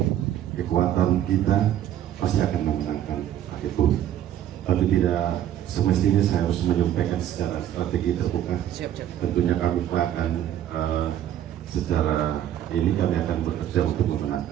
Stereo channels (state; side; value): quieter; left; 11.3 dB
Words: kekuatan kita pasti akan memenangkan paket bumi. Tapi tidak semestinya saya harus menyampaikan secara strategi terbuka. Tentunya kami akan secara ini kami akan bekerja untuk